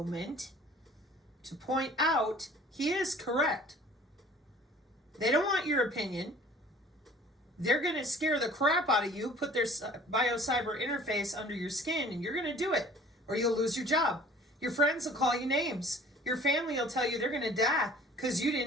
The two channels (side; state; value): both; normal; correlation 0.50